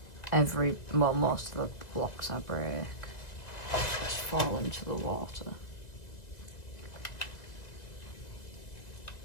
most of the blocks I break just fall into the water.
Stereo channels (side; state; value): right; late; 1.9 ms